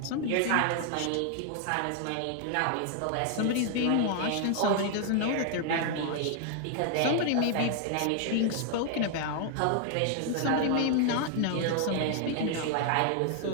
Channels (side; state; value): both; different; correlation 0.00